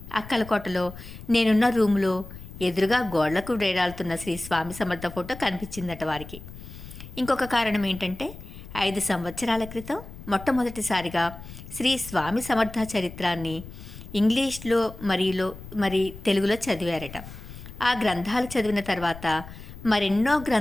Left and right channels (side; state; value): left; noise; rumble, 14 dB below the sound